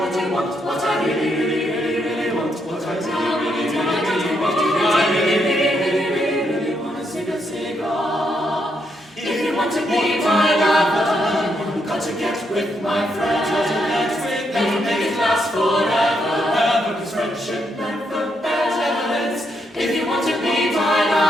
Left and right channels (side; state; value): both; normal; correlation 0.78